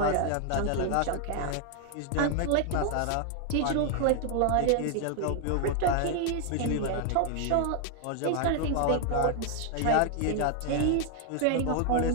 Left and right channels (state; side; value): different; both; correlation 0.00